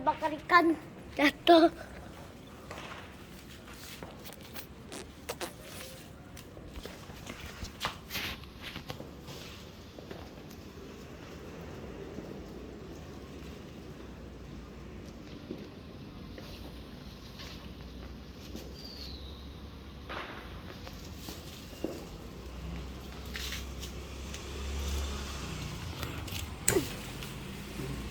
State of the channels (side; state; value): both; identical; correlation 1.00